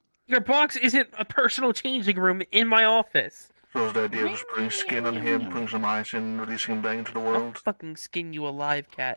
Your box isn't a personal changing room in my office. So is the idea of just putting skin on him, putting some ice in, releasing him back into the world? I'll fucking skin you alive,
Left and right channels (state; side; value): inverted; both; correlation -1.00